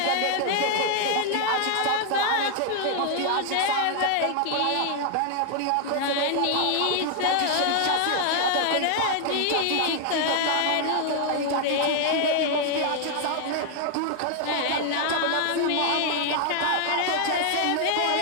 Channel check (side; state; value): both; different; correlation 0.00